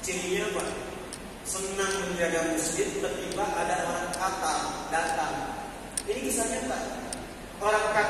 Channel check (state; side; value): identical; both; correlation 1.00